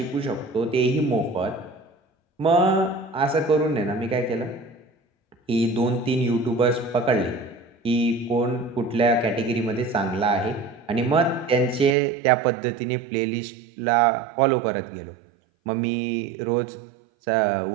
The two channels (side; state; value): left; drops out; at 12.0 s